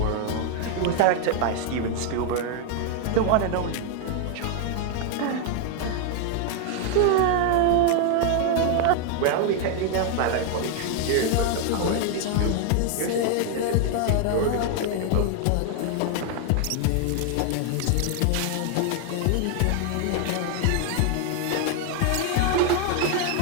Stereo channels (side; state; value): both; different; correlation 0.00